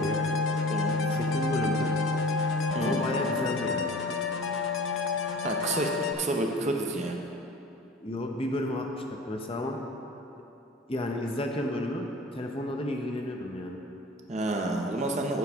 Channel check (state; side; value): normal; both; correlation 0.41